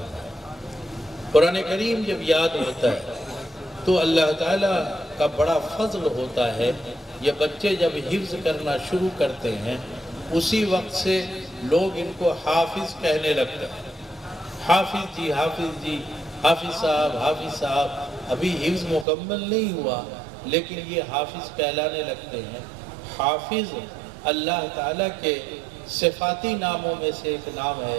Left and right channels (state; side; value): drops out; left; at 19.1 s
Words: قرآن کریم جب یاد ہوتا ہے تو اللہ تعالیٰ کا بڑا فضل ہوتا ہے۔ یہ بچے جب حفظ کرنا شروع کرتے ہیں اسی وقت سے لوگ ان کو حافظ کہنے لگتے ہیں۔ حافظ جی، حافظ جی، حافظ صاحب، ابھی حفظ مکمل نہیں ہوا لیکن یہ حافظ کہلانے لگتے ہیں۔ حافظ اللہ تعالیٰ کے صفاتی ناموں میں سے ایک نام